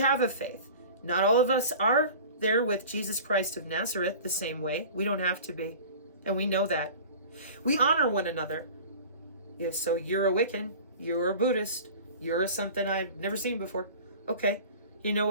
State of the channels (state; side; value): inverted; both; correlation -0.40